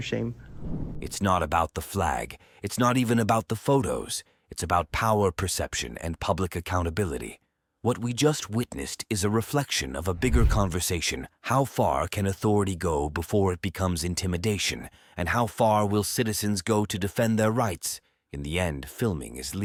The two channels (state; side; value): identical; both; correlation 1.00